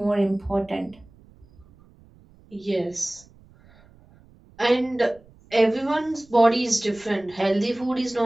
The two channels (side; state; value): right; noise; rumble, 27 dB below the sound